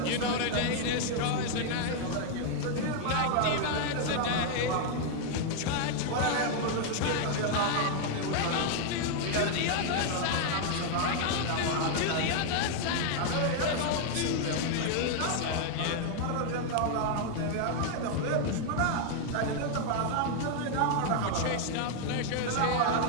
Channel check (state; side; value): different; both; correlation 0.00